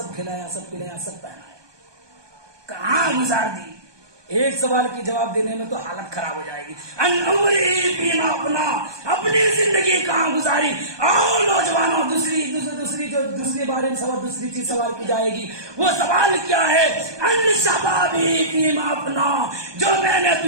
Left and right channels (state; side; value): late; left; 1.2 ms